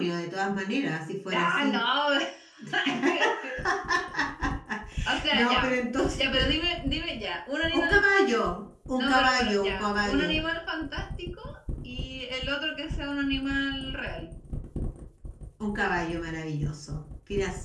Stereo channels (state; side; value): identical; both; correlation 1.00